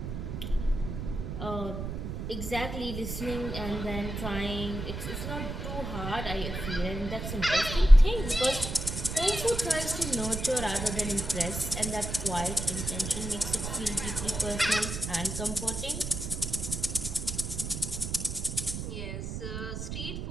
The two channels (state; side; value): noise; right; rumble, 5 dB below the sound